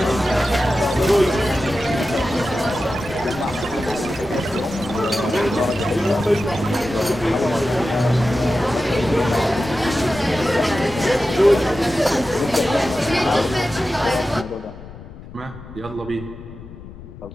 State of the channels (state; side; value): noise; left; rumble, 16 dB below the sound